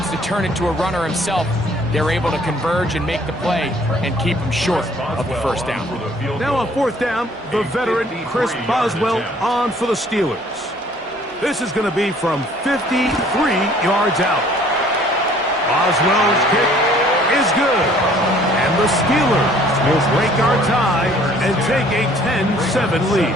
to turn it to a runner himself, they're able to converge and make the play and keep him short of the 1st down. Now on 4th down, the veteran Chris Boswell on for the Steelers. This is going to be from 53 yards out. Boswell's kick is good. And the Steelers will break our tie and take a 10-7 lead.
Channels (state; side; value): normal; both; correlation 0.57